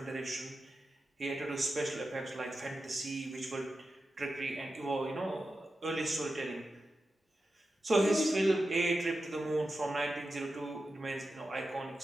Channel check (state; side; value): normal; both; correlation 0.91